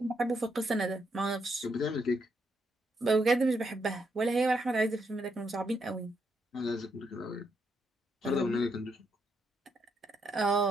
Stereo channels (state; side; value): normal; both; correlation 0.78